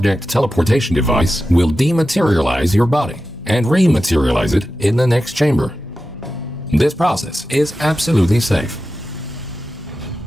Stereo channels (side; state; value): both; normal; correlation 0.92